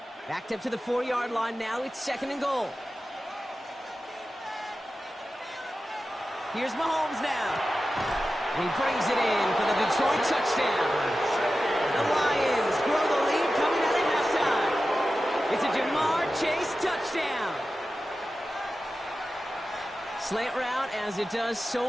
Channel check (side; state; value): both; normal; correlation 0.93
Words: Backed up to the 4-yard line now. It's 2nd and goal. Here's Mahomes now. And he brings it in for the Detroit touchdown. The Lions grow the lead coming out at halftime. It's a Jamar Chase touchdown. Slant route, as it does